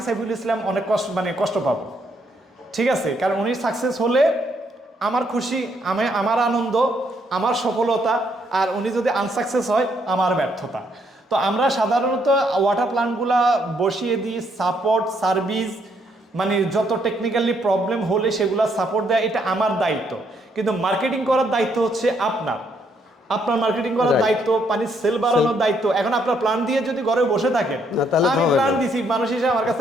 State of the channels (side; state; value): both; normal; correlation 0.72